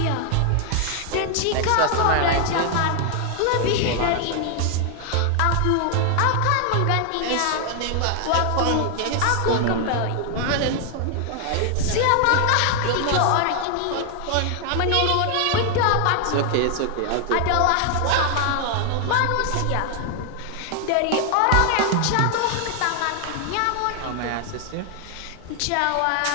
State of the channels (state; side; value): different; both; correlation 0.00